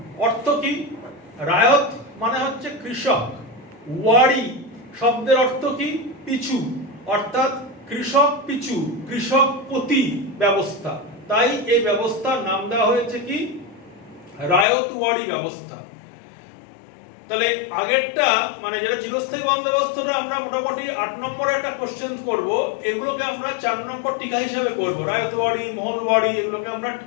অর্থ কি? রায়ত মানে হচ্ছে কৃষক, ওয়ারি শব্দের অর্থ কি? পিছু, অর্থাৎ কৃষক পিছু, কৃষক প্রতি ব্যবস্থা। তাই এই ব্যবস্থার নাম দেওয়া হয়েছে কি? রায়তওয়ারি ব্যবস্থা। তাহলে আগেরটা মানে যেটা চিরস্থায়ী বন্দোবস্তটা আমরা মোটামুটি 8 নম্বরে একটা কোশ্চেন করব, এগুলোকে আমরা 4 নম্বর টিকা হিসাবে করব। রায়তওয়ারি, মোহনওয়ারি এগুলোকে আমরা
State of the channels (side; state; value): right; drops out; at 14.7 s